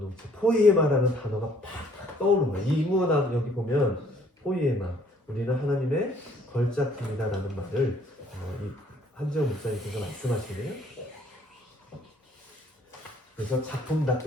포이에마라는 단어가 팍 떠오르는 거예요. 이 인문학 여기 보면 포이에마, 우리는 하나님의 걸작품이다라는 말을 이 한지영 목사님께서 말씀하시네요. 그래서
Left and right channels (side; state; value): both; normal; correlation 0.61